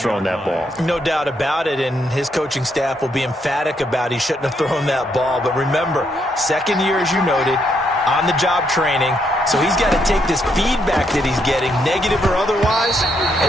thrown that ball. No doubt about it, and his coaching staff will be emphatic about he shouldn't have thrown that ball. But remember, second year, as you noted, on-the-job training. So he's got to take this feedback that he's getting, negative or otherwise,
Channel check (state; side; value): normal; both; correlation 0.76